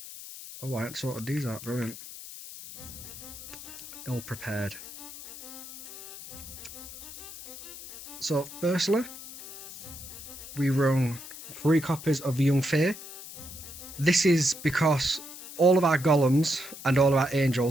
Oh, I hadn't sorted these out, brilliant. Ill prepared. So firstly, we run 3 copies of the Young Fae. This is because all of our golems and all of our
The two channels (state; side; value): noise; left; hiss, 13 dB below the sound